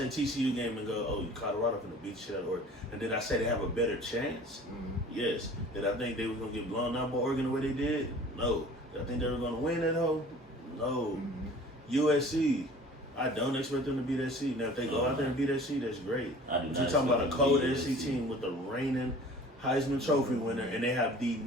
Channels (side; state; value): both; normal; correlation 0.46